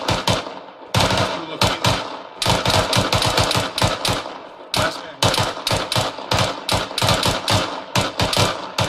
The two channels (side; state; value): both; identical; correlation 1.00